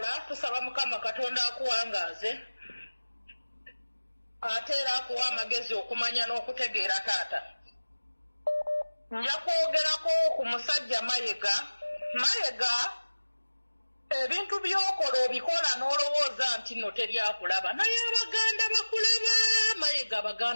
tusaba Mukama Katonda akuwangaaze ate era akuwa amagezi okumanya n'okutegeera taata. Nja kwogerako ku musajja Mayiga ebintu by'okola obikola n'olowooza nti nno teryakulaba naye Abaganda bakulaba Mayiga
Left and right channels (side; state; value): both; inverted; correlation -1.00